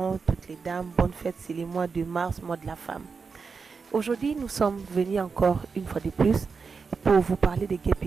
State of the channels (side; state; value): left; quieter; 5.1 dB